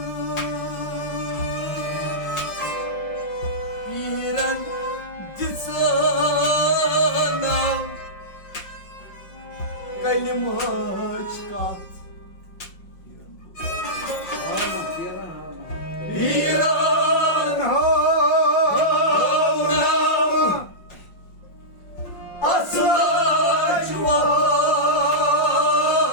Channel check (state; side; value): late; right; 5.6 ms